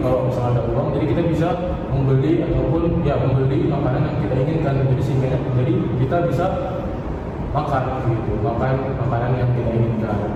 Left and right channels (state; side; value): identical; both; correlation 1.00